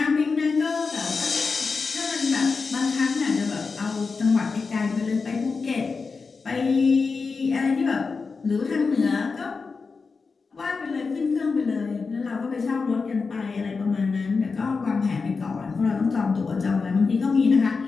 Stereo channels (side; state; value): right; quieter; 4.6 dB